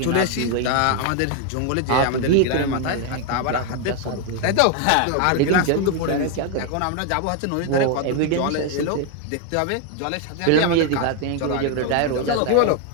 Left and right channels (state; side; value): different; both; correlation 0.01